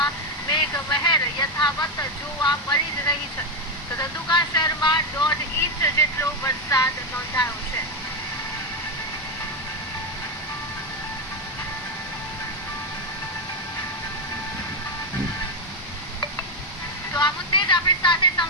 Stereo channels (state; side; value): normal; both; correlation 0.07